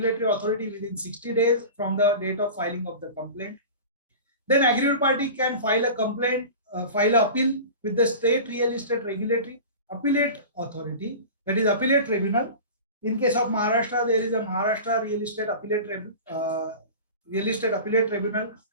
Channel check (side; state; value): both; inverted; correlation -0.34